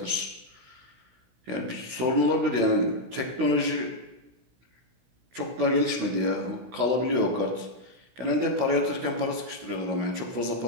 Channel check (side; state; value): left; late; 16 ms